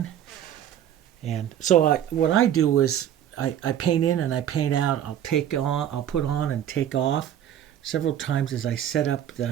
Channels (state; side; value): quieter; left; 10.4 dB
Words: And so what I do is I paint in and I paint out. I'll put on and take off several times as I set up